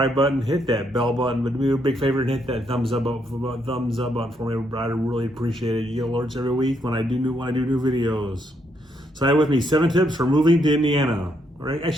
button, hit that bell button, but do me a big favor and hit that thumbs up button for me. I'd really appreciate it. You get alerts every week when I do new videos. So I have with me 7 tips for moving to Indiana, or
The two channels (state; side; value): normal; both; correlation 0.75